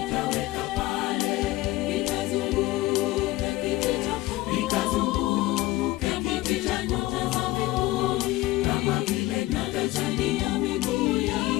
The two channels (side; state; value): right; quieter; 18.1 dB